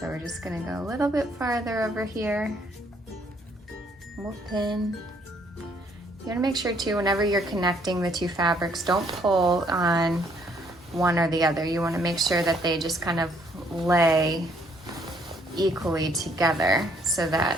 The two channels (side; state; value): both; normal; correlation 0.66